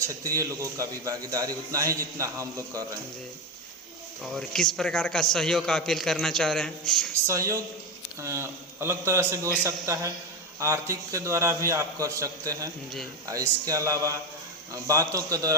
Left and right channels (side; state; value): both; normal; correlation 0.14